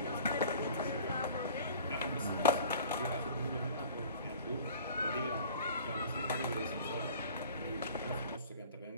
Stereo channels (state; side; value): inverted; both; correlation -0.45